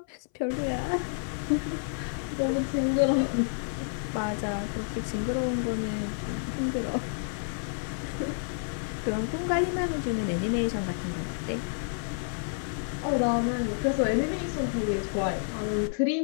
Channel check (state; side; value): silent; right; 58 dB below the other